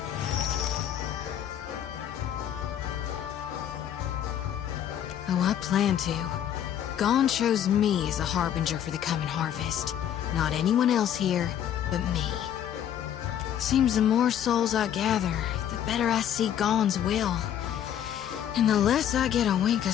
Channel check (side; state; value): right; quieter; 10.1 dB